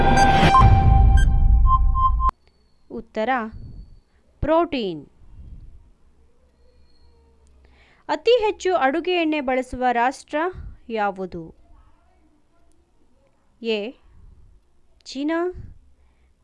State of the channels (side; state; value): both; identical; correlation 1.00